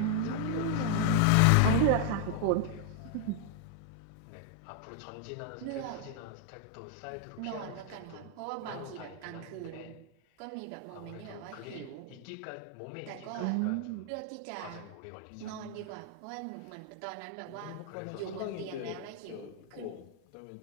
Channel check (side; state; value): both; different; correlation 0.00